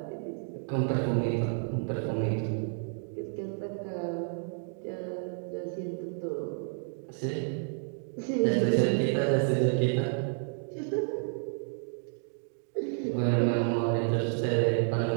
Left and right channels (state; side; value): silent; left; 57 dB below the other